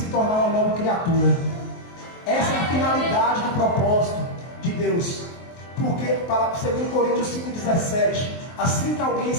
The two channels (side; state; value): right; late; 23 ms